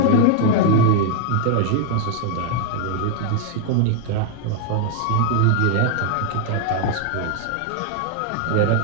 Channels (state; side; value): different; both; correlation 0.00